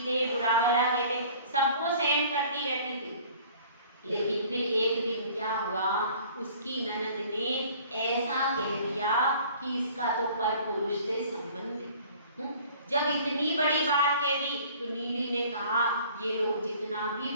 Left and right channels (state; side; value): inverted; both; correlation -0.50